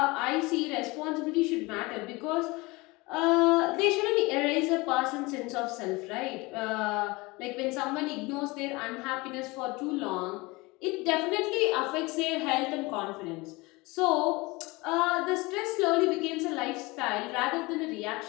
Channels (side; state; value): right; quieter; 23.7 dB